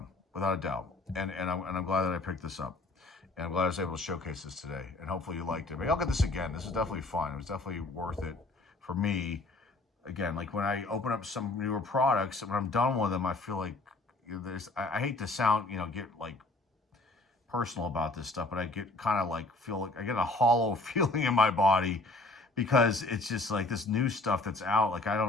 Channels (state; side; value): quieter; right; 3.0 dB